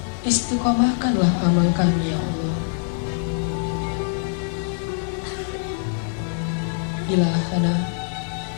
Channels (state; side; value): silent; right; digital silence